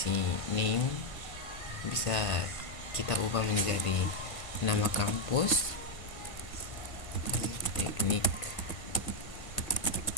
name bisa kita ubah menjadi nama kampus, Politeknik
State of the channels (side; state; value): right; late; 1.5 ms